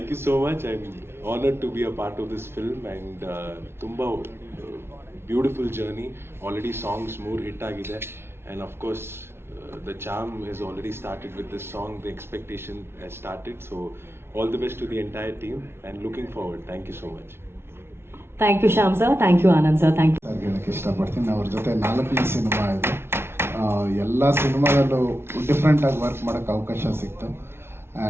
you so much. I'm honored to be a part of this film, and tumba beautiful journey. Already songs more hit agide, and of course the charm has already started with this song. The expectation has started. So all the best to the entire team and looking forward. Thank you so much. Thank you Shyam sir, thank you Anand sir, thank you. ಹೇಳಕ್ಕೆ ಇಷ್ಟಪಡ್ತೀನಿ. ಅವ್ರ ಜೊತೆ 4ನೇ cinema ಇದು. ಎಲ್ಲ ಸಿನಿಮಾದಲ್ಲೂ ಡಿಫ್ರೆಂಟಾಗಿ work ಮಾಡೋಕ್ಕೆ ಅವಕಾಶ ಸಿಕ್ತು.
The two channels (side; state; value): left; late; 0.12 ms